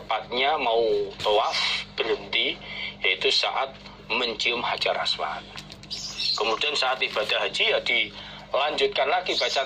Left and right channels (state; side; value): identical; both; correlation 1.00